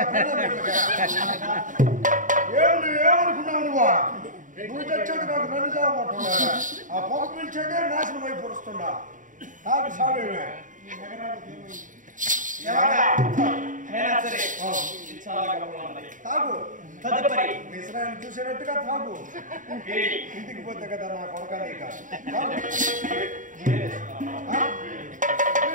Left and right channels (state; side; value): late; left; 0.38 ms